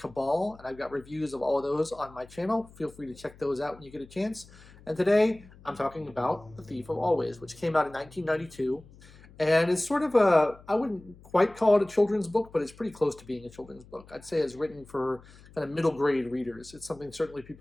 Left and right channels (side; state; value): left; noise; hum, 23 dB below the sound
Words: and I've got reviews of all of those on my channel. Feel free to check those out when you get a chance. And today I'm talking about The Thief of Always, which came out in 1992. And it's sort of I wouldn't quite call it a children's book, but it's pretty close to being a children's book. I'd say it's written for kind of middle grade readers. It's something certainly